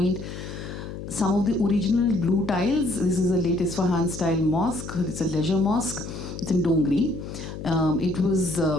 Some of the original blue tiles. This is a late Isfahan style mosque. It's a leisure mosque. It's in Dongri. It was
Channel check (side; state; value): left; noise; hum, 9 dB below the sound